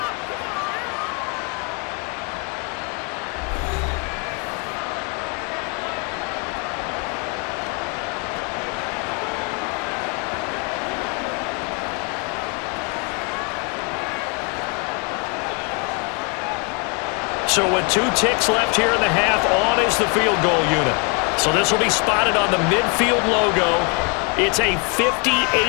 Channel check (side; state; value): right; quieter; 33.8 dB